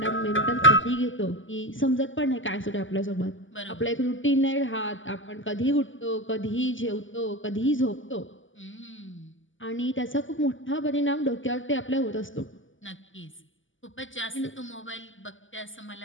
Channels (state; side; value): late; right; 0.56 ms